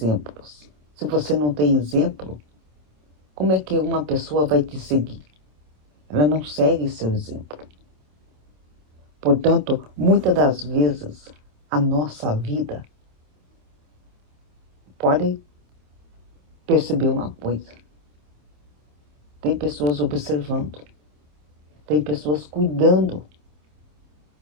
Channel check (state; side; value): late; left; 27 ms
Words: Se você não tem exemplo, como é que uma pessoa vai te seguir? Ela não segue seu exemplo. Portanto, muitas das vezes, a nossa vida pode perceber uma coisa. Tem pessoas observando. Tem pessoas cuidando